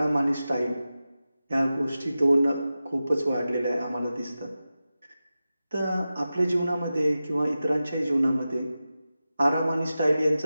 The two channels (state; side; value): inverted; both; correlation -0.94